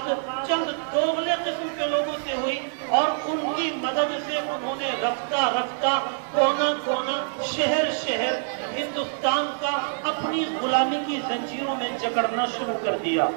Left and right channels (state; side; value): silent; left; 61 dB below the other